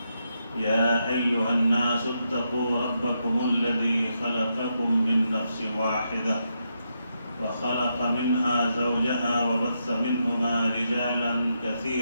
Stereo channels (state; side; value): inverted; both; correlation -0.82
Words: يا أيها الناس اتقوا ربكم الذي خلقكم من نفس واحدة وخلق منها زوجها وبث منهما رجالا